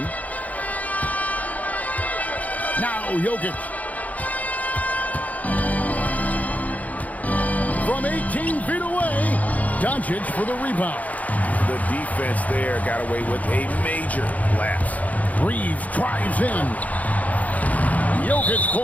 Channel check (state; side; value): late; right; 0.075 ms